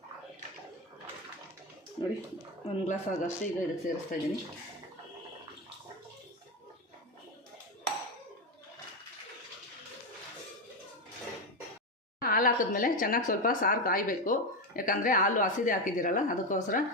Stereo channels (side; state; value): both; normal; correlation 0.12